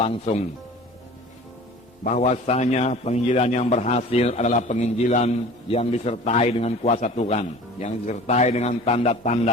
Bahwasanya penginjilan yang berhasil adalah penginjilan yang disertai dengan kuasa Tuhan, yang disertai dengan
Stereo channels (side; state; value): both; normal; correlation 0.42